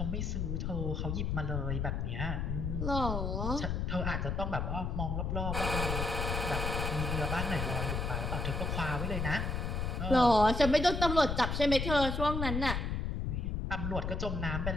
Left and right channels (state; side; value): noise; left; rumble, 1 dB below the sound